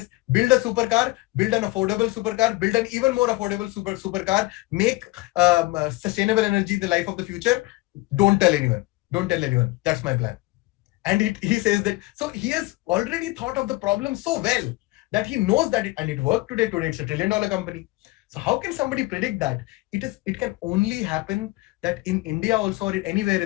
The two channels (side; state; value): right; quieter; 21.0 dB